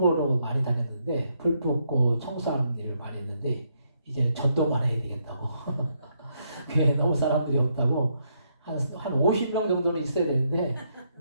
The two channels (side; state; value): both; inverted; correlation -0.76